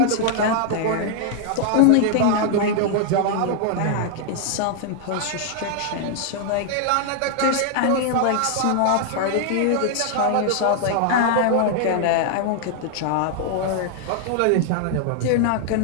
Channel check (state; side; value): different; both; correlation 0.00